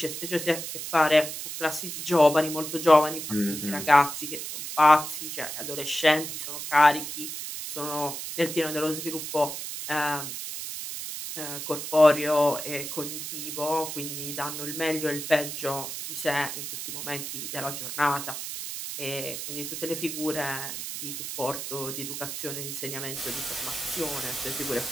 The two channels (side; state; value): right; noise; hiss, 6 dB below the sound